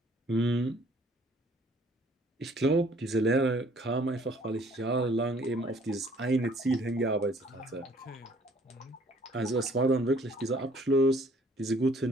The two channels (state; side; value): normal; both; correlation 0.59